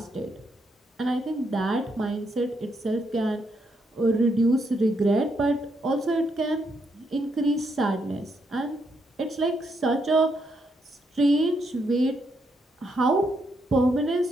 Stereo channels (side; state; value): both; normal; correlation 0.78